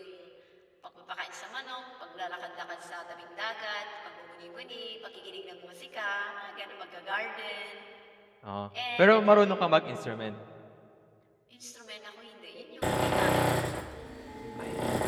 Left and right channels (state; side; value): identical; both; correlation 1.00